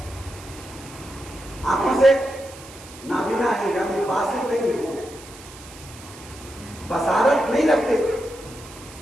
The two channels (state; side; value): noise; right; hiss, 18 dB below the sound